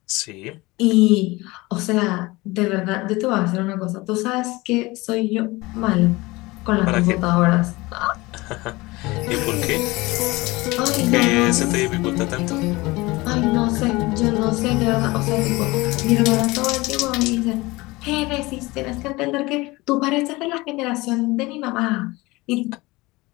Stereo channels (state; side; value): quieter; right; 21.8 dB